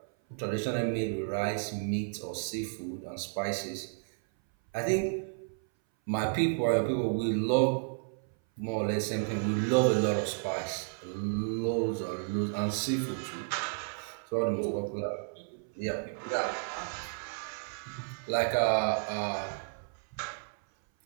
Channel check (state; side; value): silent; left; 56 dB below the other